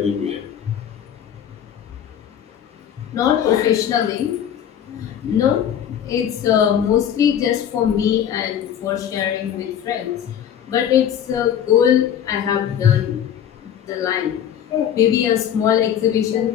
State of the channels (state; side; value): quieter; right; 9.5 dB